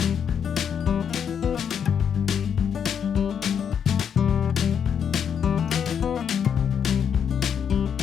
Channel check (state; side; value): quieter; right; 7.7 dB